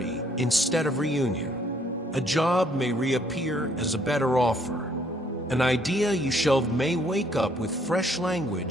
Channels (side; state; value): both; normal; correlation 0.66